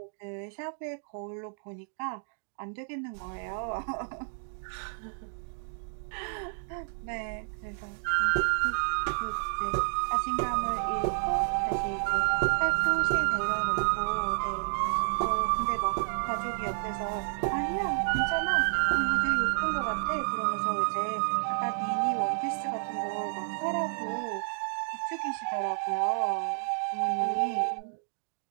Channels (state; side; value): silent; left; digital silence